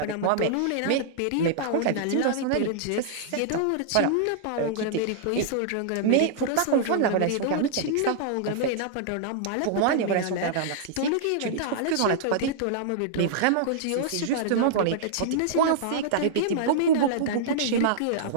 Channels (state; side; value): different; both; correlation -0.02